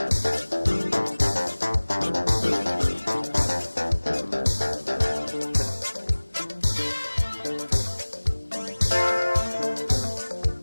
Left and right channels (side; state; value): both; inverted; correlation -1.00